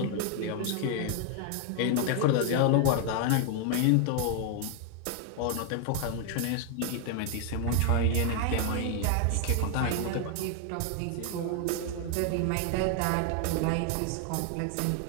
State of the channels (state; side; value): different; both; correlation 0.00